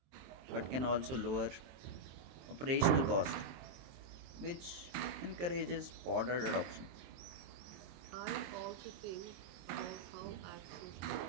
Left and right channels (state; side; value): late; left; 23 ms